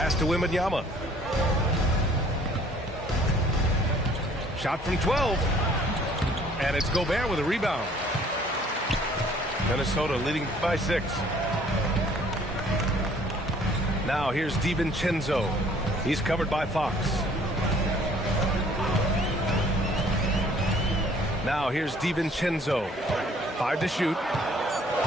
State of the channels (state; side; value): normal; both; correlation 0.57